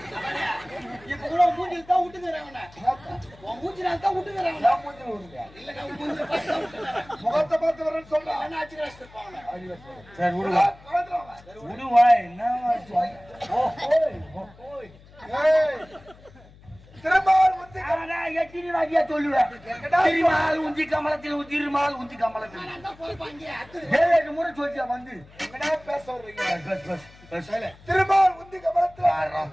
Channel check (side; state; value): left; noise; hum, 24 dB below the sound